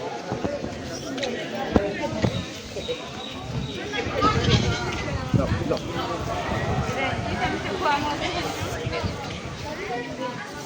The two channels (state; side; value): identical; both; correlation 1.00